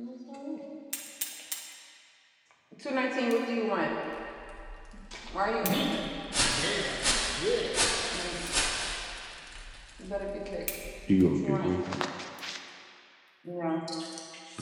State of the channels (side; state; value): both; identical; correlation 1.00